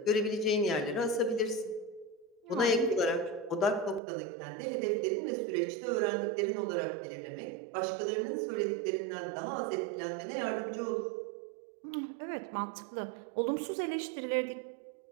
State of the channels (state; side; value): drops out; left; at 4.0 s